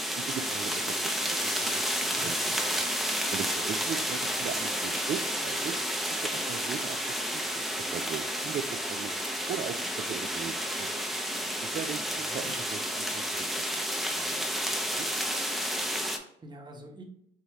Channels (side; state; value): both; normal; correlation 0.67